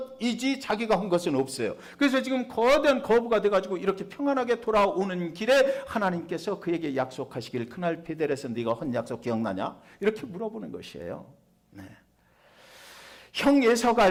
자기가 한 것은 없어요. 그래서 지금 거대한 거부가 돼가지고 이렇게 평안하게 돌아오는 길에 하나님께서 그에게 약속하시길, 그날 베델에서 네가 한 약속 기억나냐? 이렇게 물어보는 것이에요. 네. 형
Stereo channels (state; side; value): identical; both; correlation 1.00